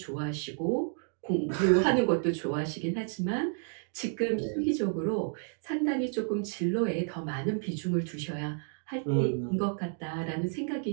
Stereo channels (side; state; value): left; silent; 57 dB below the other